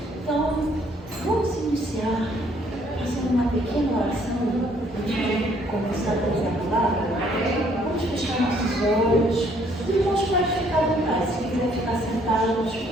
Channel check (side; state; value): both; normal; correlation 0.64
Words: Então, vamos iniciar fazendo uma pequena oração antes de começar a trazer a palavra. Vamos fechar nossos olhos. Os irmãos podem ficar à vontade. Se quiser ficar sentados,